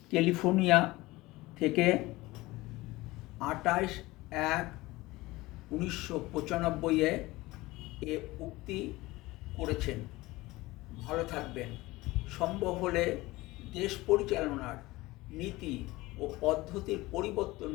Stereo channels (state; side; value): quieter; right; 19.9 dB